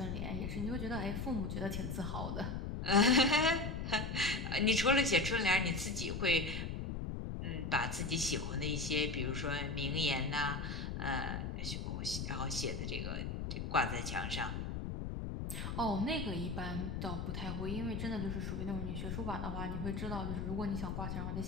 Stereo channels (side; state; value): left; noise; rumble, 3 dB below the sound